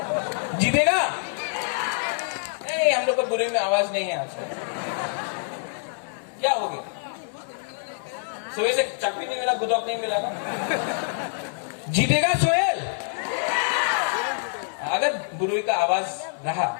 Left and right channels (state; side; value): silent; right; 61 dB below the other